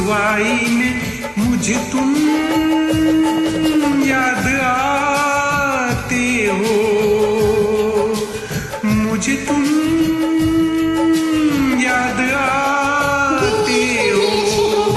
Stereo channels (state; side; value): identical; both; correlation 1.00